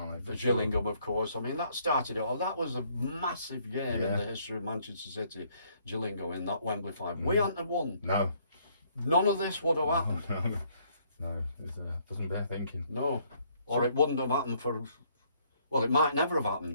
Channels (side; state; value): both; inverted; correlation -0.67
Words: they? The Gillingham, of course. I mean, that started it all. That was a massive game in the history of Manchester City. Gillingham in that Wembley final. We hadn't have won. No. None of this would have happened. No, it doesn't bear thinking. No. Or it wouldn't have happened for... Well, it might never have